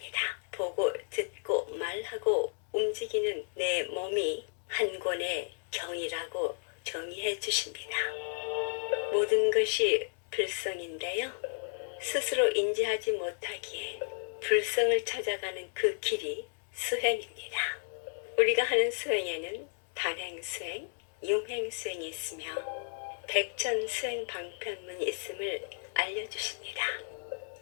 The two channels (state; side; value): silent; right; 56 dB below the other